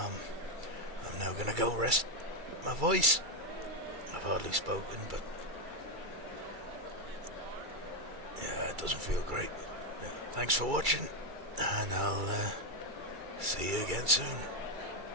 now going to go rest my voice. I've hardly spoken, but yeah, it doesn't feel great. Yeah, thanks for watching, and I'll see you again soon.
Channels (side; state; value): left; late; 2.3 ms